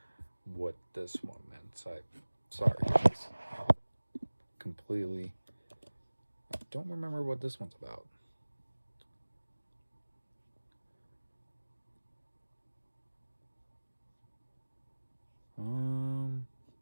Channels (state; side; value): inverted; both; correlation -1.00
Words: what this one meant. Sorry, guys. Completely. I don't remember what this one's about.